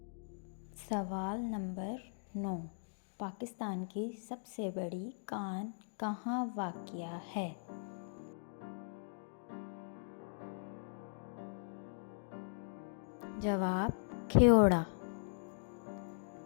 सवाल नंबर 9, पाकिस्तान की सबसे बड़ी कान कहाँ वाक़या है? जवाब खेओड़ा।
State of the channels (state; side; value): silent; right; digital silence